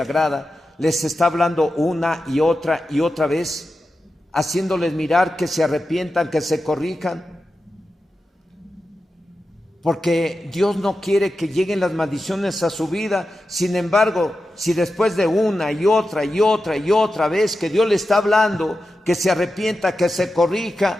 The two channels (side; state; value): both; normal; correlation 0.91